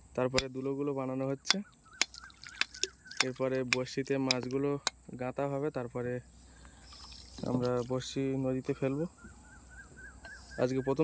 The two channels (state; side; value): identical; both; correlation 1.00